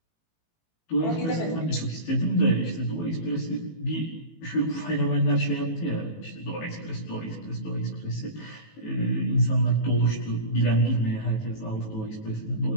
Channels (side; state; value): right; late; 18 ms